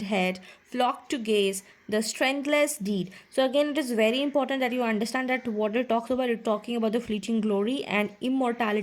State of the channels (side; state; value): both; identical; correlation 1.00